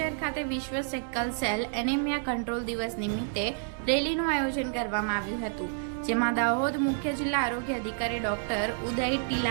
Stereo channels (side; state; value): left; silent; digital silence